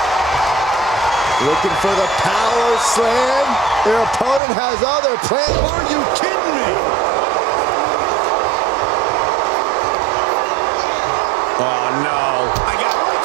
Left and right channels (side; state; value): left; drops out; at 4.4 s